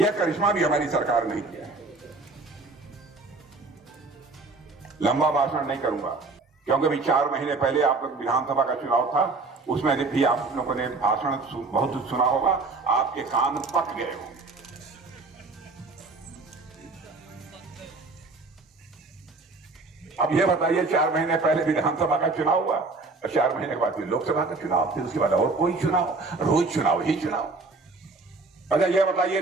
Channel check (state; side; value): quieter; left; 3.7 dB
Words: करिश्मा भी हमारी सरकार नहीं किया। लंबा भाषण नहीं करूंगा, क्योंकि अभी 4 महीने पहले आप लोग विधानसभा का चुनाव था, उसमें भी आप लोगों ने भाषण बहुत सुना होगा, आपके कान पक गए होंगे। अब यह बताइए, 4 महीने पहले विधानसभा का चुनाव हुआ और 4 महीने के बाद फिर लोकसभा का चुनाव, फिर उसके बाद और कोई चुनाव, रोज चुनाव ही चुनाव। अच्छा यह बताइए,